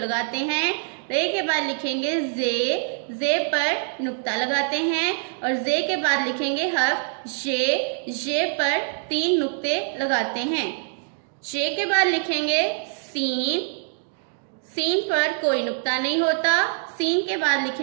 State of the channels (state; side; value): silent; left; 57 dB below the other